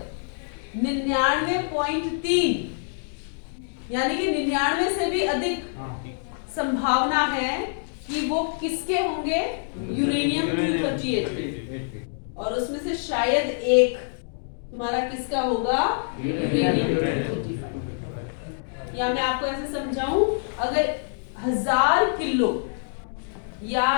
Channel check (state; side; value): silent; right; digital silence